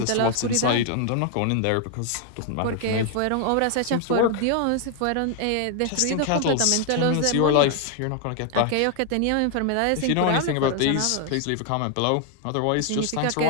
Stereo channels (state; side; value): different; both; correlation 0.00